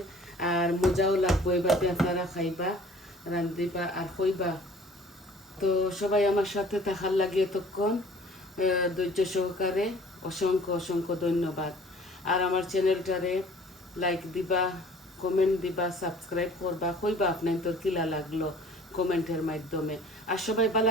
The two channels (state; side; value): normal; both; correlation 0.51